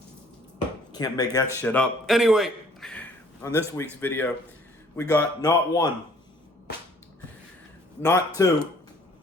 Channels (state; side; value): normal; both; correlation 0.58